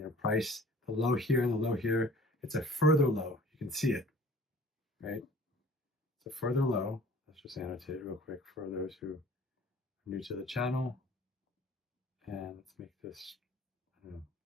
price, the low here and the low here, it's a further low. You can see it, right? It's a further low. Let's just annotate it real quick for those who are new to the channel. And let's make this, I don't know,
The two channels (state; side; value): normal; both; correlation 0.49